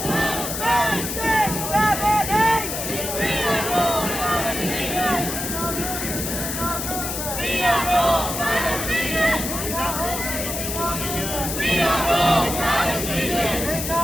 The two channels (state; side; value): noise; left; hiss, 4 dB below the sound